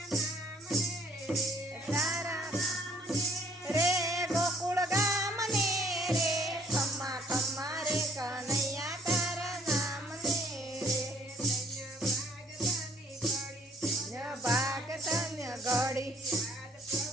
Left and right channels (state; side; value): normal; both; correlation 0.60